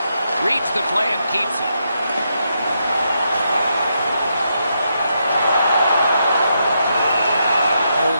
Reads the play and keeps it.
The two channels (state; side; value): inverted; both; correlation -0.81